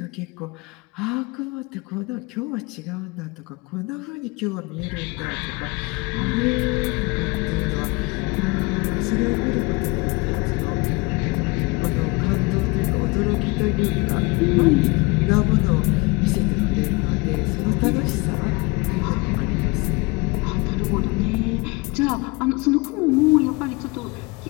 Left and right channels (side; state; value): right; quieter; 25.8 dB